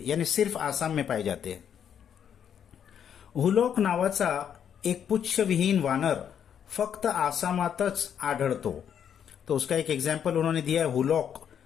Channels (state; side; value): quieter; right; 8.6 dB